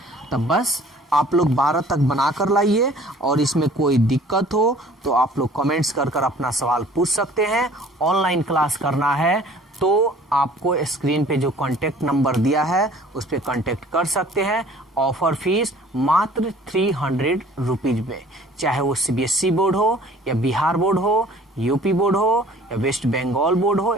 तो बस आप लोग 12 तक बनाकर लाइए और इसमें कोई दिक्कत हो तो आप लोग कमेंट्स कर अपना सवाल पूछ सकते हैं। ऑनलाइन क्लास करना है तो आपको स्क्रीन पे जो कांटेक्ट नंबर दिया है उस पर कांटेक्ट कर सकते हैं। ऑफर फीस मात्र 300 रुपीज में, चाहे वो सीबीएसई बोर्ड हो या बिहार बोर्ड हो, यूपी बोर्ड हो या वेस्ट बंगाल बोर्ड हो,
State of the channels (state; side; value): normal; both; correlation 0.51